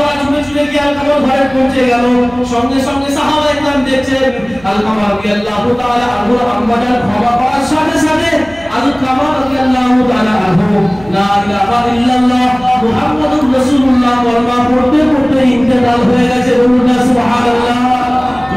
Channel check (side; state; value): right; noise; hum, 22 dB below the sound